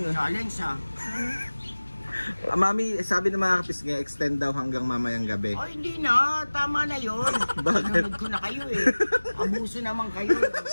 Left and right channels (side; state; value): both; inverted; correlation -1.00